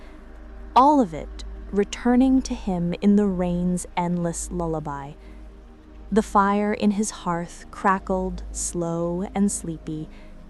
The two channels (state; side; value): identical; both; correlation 1.00